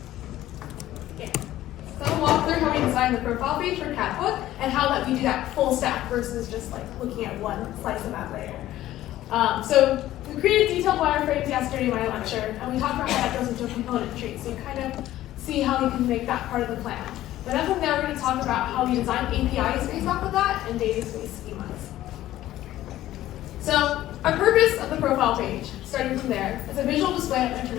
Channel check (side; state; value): right; quieter; 14.3 dB